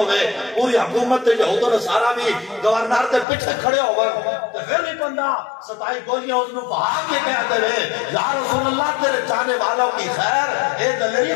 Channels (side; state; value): right; drops out; at 3.2 s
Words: پوری حکومت تے یہود و نصارا بھی گورنر تے پیچھے کھڑے ہوئے تے پھر بھی بندہ ستائی گولیاں اس نے بہا کے کہتے رہے یا رسول اللہ تیرے چاہنے والوں کی خیر اے دلیری